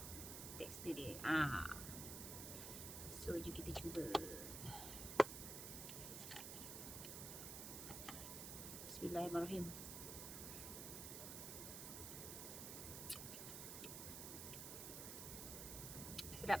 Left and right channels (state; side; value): noise; right; hiss, 5 dB below the sound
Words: So jom kita cuba. Bismillahirrahmanirrahim.